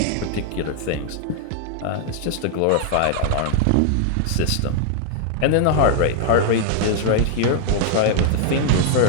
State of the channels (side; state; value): both; different; correlation 0.00